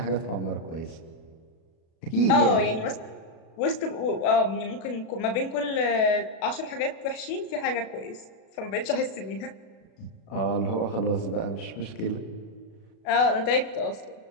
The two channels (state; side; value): late; right; 37 ms